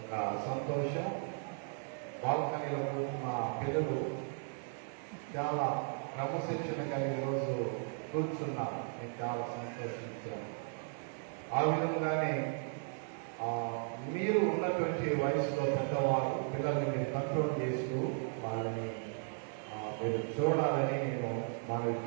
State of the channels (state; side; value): silent; left; 54 dB below the other